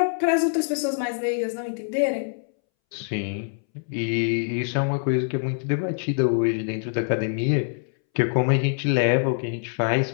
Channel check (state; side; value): silent; right; 62 dB below the other